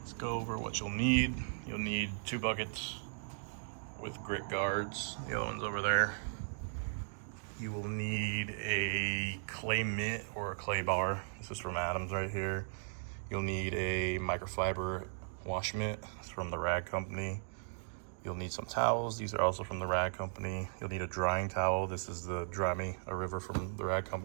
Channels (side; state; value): left; silent; digital silence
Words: go over what you'll need. You'll need 2 buckets with grit guards, the other one's over there. You will need a clay mitt or a clay bar. This is from Adams right here. You'll need a microfiber wash mitt. It's from the Rag Company. You'll need some towels. These are also from the Rag Company. You'll need a drying towel. This is the Dry Me a River from the Rag